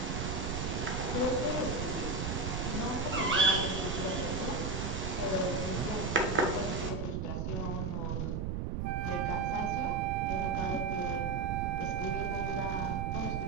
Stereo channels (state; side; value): noise; right; rumble, 1 dB below the sound